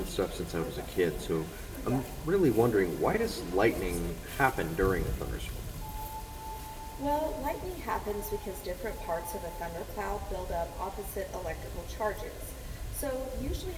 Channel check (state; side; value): identical; both; correlation 1.00